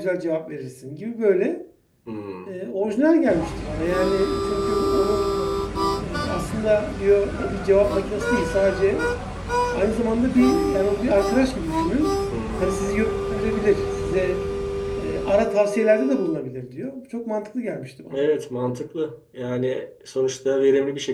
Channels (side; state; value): both; identical; correlation 1.00